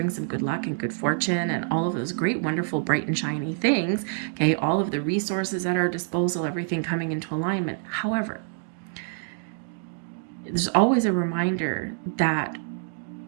some good luck and good fortune and all of those great, wonderful, bright and shiny things. Okay, all of the resources at our disposal, everything coming into alignment. However, there's always a reminder that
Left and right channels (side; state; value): left; silent; 61 dB below the other